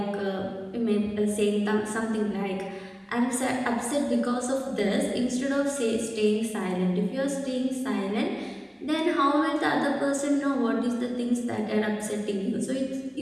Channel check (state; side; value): identical; both; correlation 1.00